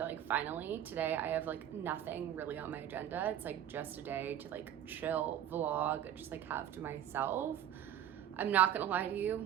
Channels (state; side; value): quieter; left; 10.7 dB